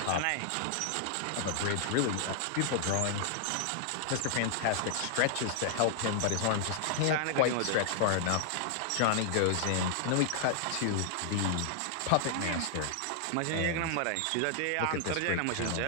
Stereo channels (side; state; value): both; different; correlation -0.01